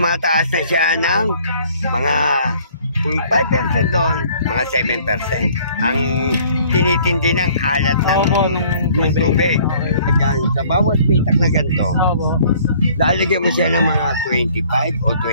na siya ng mga, kung 5% doon, mga 7%. Ang tinitindi ng alat ng tubig. Ayan, sa bawat pitak na ganito, lalagyan mo siya ng mga 25 o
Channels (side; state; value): both; inverted; correlation -0.56